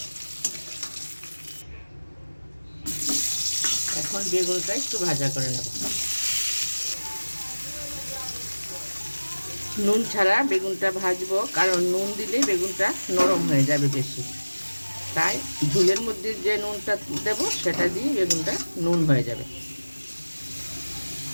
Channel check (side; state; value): both; inverted; correlation -1.00